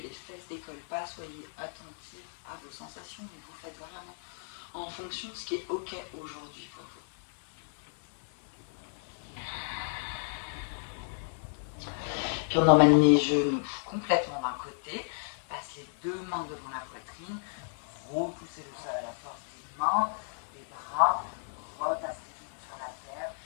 les fesses décollent pas. Soyez attentifs à vos sensations, mais vous faites vraiment en fonction de ce qui est ok aujourd'hui pour vous. Puis on emmène les genoux complètement d'un côté, passe les deux mains devant la poitrine, repoussez le sol à la force des mains, des bras, retassez les genoux sur la terre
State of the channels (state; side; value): silent; right; 56 dB below the other